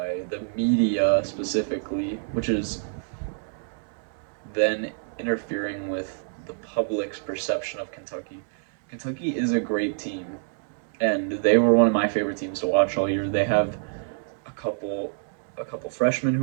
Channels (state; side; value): silent; left; digital silence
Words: the media specifically, which is then interfering with the public's perception of Kentucky. Kentucky is a great team, and they were one of my favorite teams to watch all year. They have a couple a couple freshmen